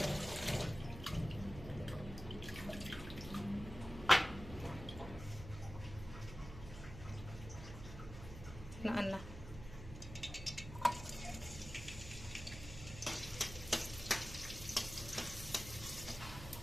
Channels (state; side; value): noise; right; hum, 11 dB below the sound